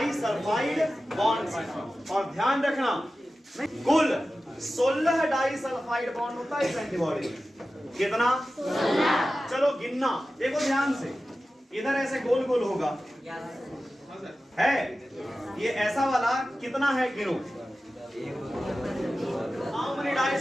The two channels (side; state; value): both; normal; correlation 0.94